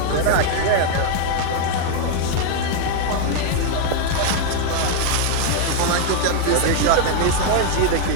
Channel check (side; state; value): both; different; correlation 0.00